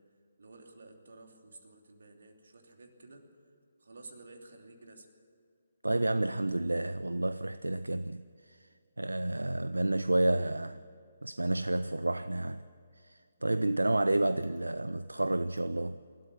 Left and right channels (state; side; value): inverted; both; correlation -0.99